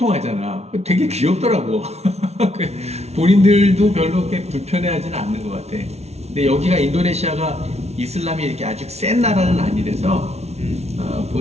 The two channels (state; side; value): late; left; 0.31 ms